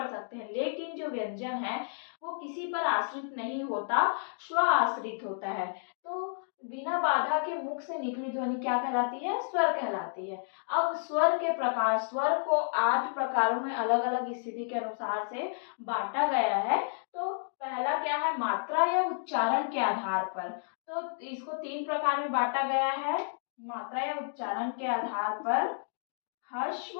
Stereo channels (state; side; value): silent; right; digital silence